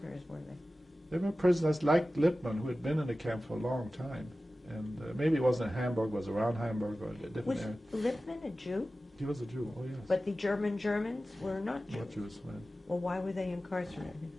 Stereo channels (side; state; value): both; normal; correlation 0.95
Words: were they? They were prisoners like Lippmann, who had been in the camp for a long time. And maybe it wasn't in Hamburg, was around Hamburg or a different area. Was Lippmann a Jew? He was a Jew, oh yes. But the Germans were not Jews? Not Jews, right. Well, why were they incarcerated?